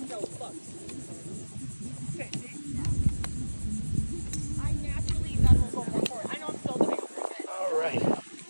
so fucked. Okay, see? I naturally then will go more forward. I know I'm still doing over a bit. All right.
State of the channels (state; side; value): inverted; both; correlation -1.00